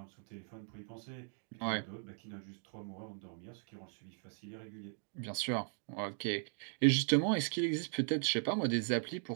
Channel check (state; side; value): silent; left; 52 dB below the other